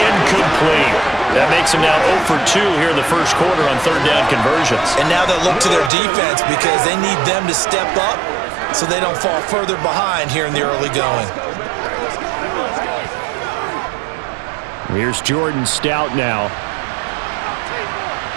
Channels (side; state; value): left; drops out; at 5.9 s